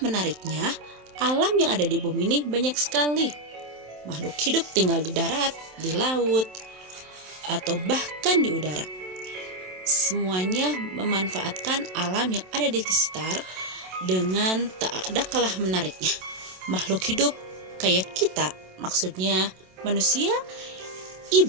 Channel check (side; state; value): left; late; 27 ms